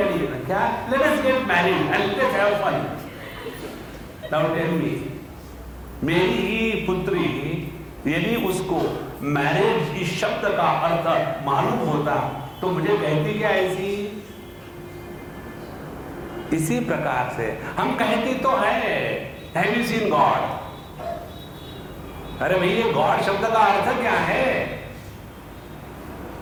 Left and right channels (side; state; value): both; identical; correlation 1.00